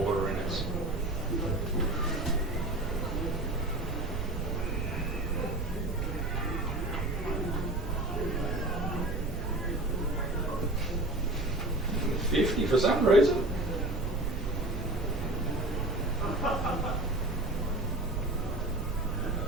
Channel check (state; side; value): noise; right; rumble, 3 dB below the sound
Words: in it. $50 for some reason. I